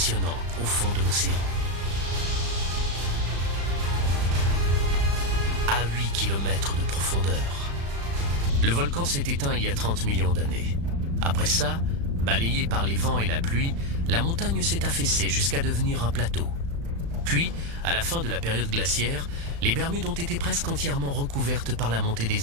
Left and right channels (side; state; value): left; late; 35 ms